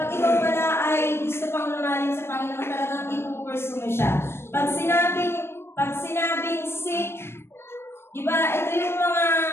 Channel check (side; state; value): right; late; 0.12 ms